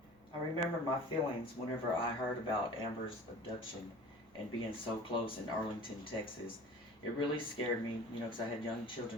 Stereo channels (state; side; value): noise; right; rumble, 29 dB below the sound